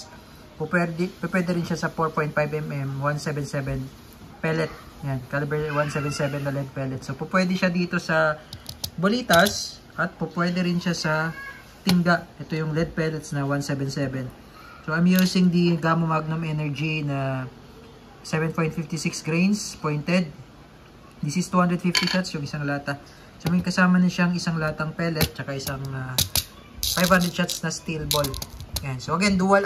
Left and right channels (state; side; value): identical; both; correlation 1.00